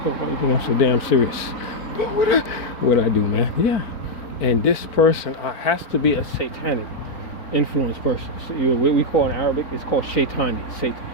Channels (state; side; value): late; right; 4.4 ms